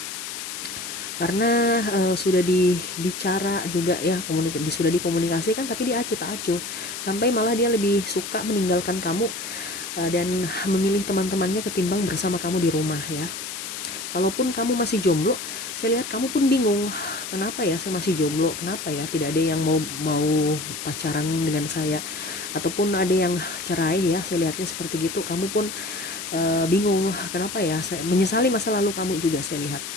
Karena sudah dibicara juga ya, sudah dikomunikasikan tapi dia acuh tak acuh, sampai malah dia lebih suka meninggalkan kamu dan memilih teman-temannya ketimbang bersama kamu di rumah ya. Kalaupun kamu masih jomblo, saya lihat kamu pun bingung, kenapa ya saya masih jomblo, kenapa ya tidak ada yang mau mau pacaran dengan saya, ataupun ada yang cerai ya, saya lihatnya seperti gitu. Kamu pun bingung, kenapa ya, saya menyesali masa lalu kamu juga saya lihat,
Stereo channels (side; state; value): left; noise; hiss, 7 dB below the sound